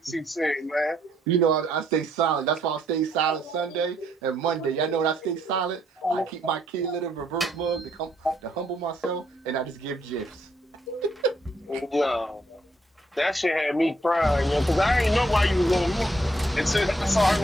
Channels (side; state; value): both; normal; correlation 0.71